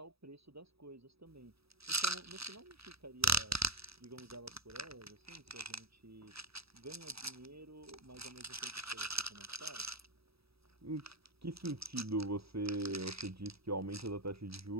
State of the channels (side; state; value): left; late; 0.77 ms